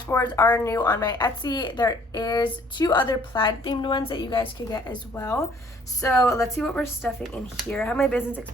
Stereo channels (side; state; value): both; normal; correlation 0.59